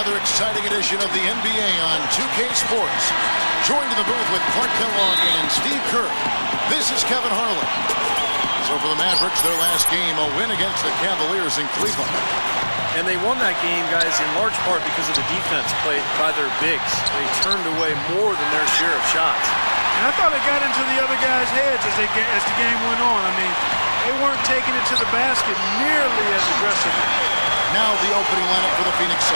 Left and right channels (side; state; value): both; inverted; correlation -1.00